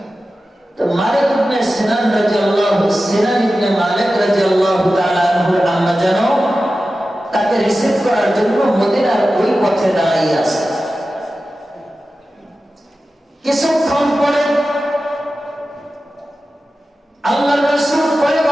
তো মালিক ইবনে সিনান ইবনে মালিক রাদিয়াল্লাহু তাআলা আনহুর আম্মা জান তাকে রিসিভ করার জন্য মদিনার ওই পথে দাঁড়িয়ে আছে। কিছুক্ষণ পরে আল্লাহর রাসূল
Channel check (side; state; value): both; normal; correlation 0.94